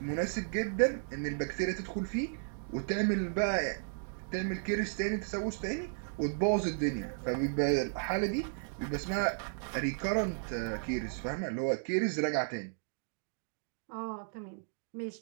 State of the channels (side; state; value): left; silent; digital silence